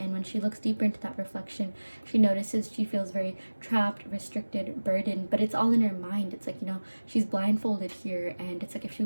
when she looks deeper into that reflection, she notices she feels very trapped, restricted, burdened, but it's all in her mind. It's like, you know, she's blindfolded here, and it's like if she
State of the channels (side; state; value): both; inverted; correlation -1.00